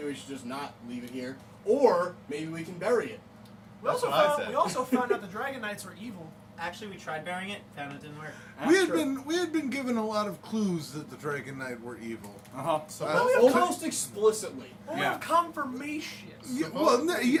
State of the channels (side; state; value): both; identical; correlation 1.00